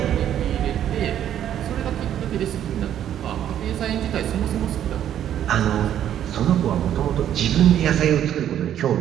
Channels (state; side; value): quieter; left; 10.6 dB